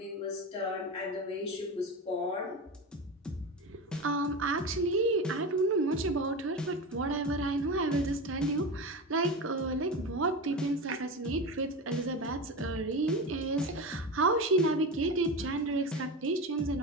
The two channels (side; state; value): both; normal; correlation 0.24